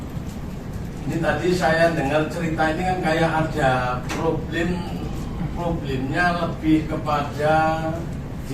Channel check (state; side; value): identical; both; correlation 1.00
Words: Ini tadi saya dengar cerita ini kan kayak ada problemnya lebih kepada